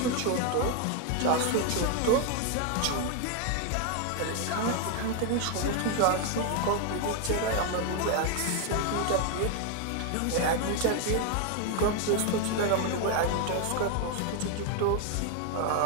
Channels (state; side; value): different; both; correlation 0.01